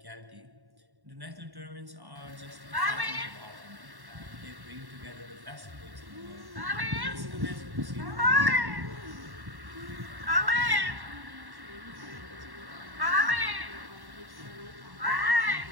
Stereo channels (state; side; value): late; left; 1.1 ms